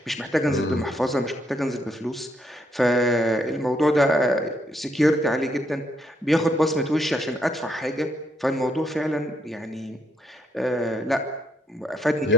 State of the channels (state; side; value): normal; both; correlation 0.72